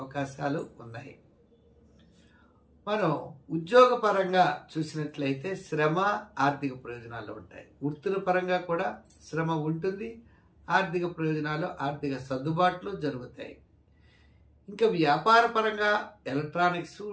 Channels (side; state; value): both; identical; correlation 1.00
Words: ఉన్నాయి. మనం ఉద్యోగపరంగా చూసినట్లయితే శ్రమ ఆర్థిక ప్రయోజనాలు ఉంటాయి. వృత్తుల పరంగా కూడా శ్రమ ఉంటుంది, ఆర్థిక ప్రయోజనాలు, ఆర్థిక సర్దుబాట్లు జరుగుతాయి. ఇంకా వ్యాపార పరంగా ఎలక్ట్రానిక్స్,